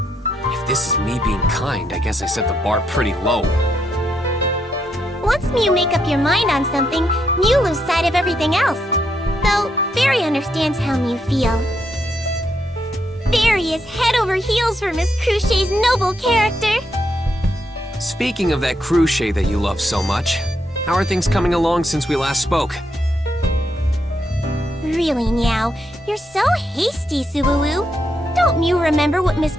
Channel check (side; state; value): both; normal; correlation 0.79